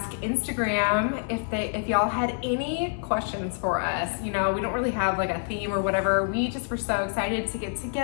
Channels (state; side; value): silent; right; 60 dB below the other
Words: Instagram if y'all had any questions for us. You know, we don't really have like a theme or whatever. We just were so excited to get